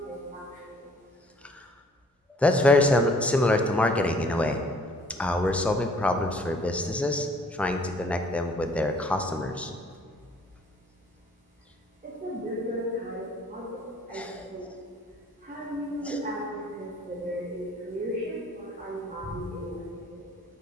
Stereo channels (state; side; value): normal; both; correlation 0.57